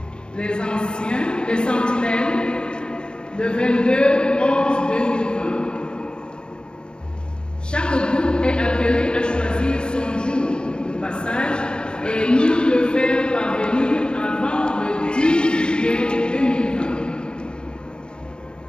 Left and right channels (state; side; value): late; right; 0.050 ms